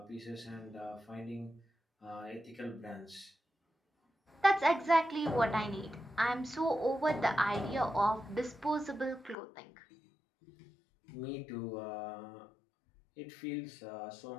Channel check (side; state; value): right; drops out; at 9.3 s